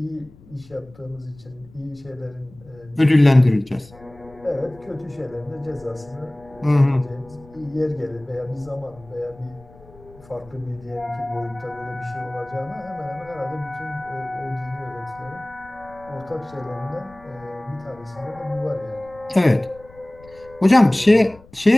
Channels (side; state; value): left; noise; rumble, 24 dB below the sound